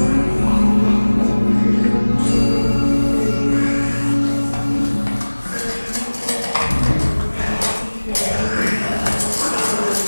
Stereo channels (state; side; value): inverted; both; correlation -1.00